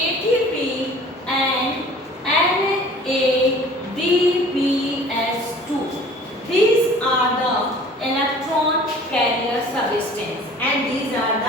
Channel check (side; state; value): both; normal; correlation 0.48